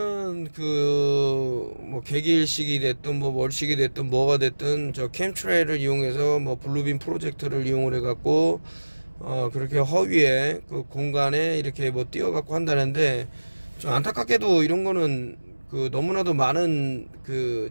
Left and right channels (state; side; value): inverted; both; correlation -1.00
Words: 뭐 개기일식이 됐든 뭐 월식이 됐든 뭐가 됐든 저 캠트레일을 이용해서 뭐 블루빔 프로젝터를 이용을 해갖고 그렇게 허위에 그 공간에 이렇게 뭐 띄워갖고 한다는데, 좀 안타깝게도 이런 거는 너무나도 많은